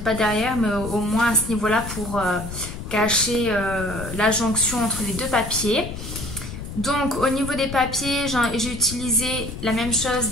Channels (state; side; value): noise; left; rumble, 9 dB below the sound